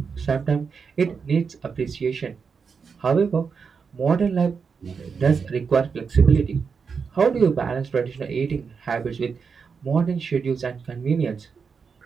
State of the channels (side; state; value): left; quieter; 5.7 dB